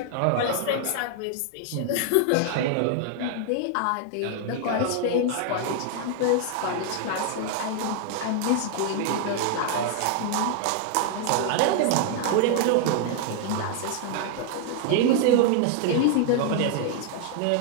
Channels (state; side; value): different; both; correlation 0.00